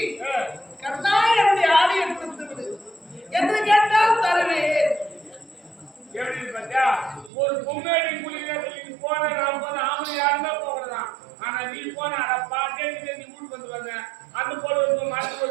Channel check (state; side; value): drops out; left; at 7.3 s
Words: ஒரு பொம்மையடி குளிக்கிறதுக்கு போன நான் போன ஆம்பளை யாருமே போகிறதான். ஆனா நீ போன அட பாட்டே நீ வீட்டுக்கு வந்து வந்த அந்த போல ஒரு மரத்து